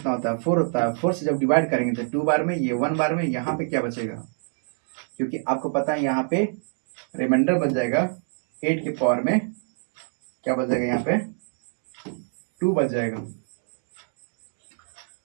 होता है? 4 होता है। 4 से जब डिवाइड करेंगे तो 2 बार में, ये 1 बार में, यहाँ पे क्या बचेगा? क्योंकि आपको पता है यहाँ पे रिमाइंडर बच जाएगा 8 के पावर में, क्या बच जाएगा? यहाँ पे 2 बच जाएगा।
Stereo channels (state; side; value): silent; left; 58 dB below the other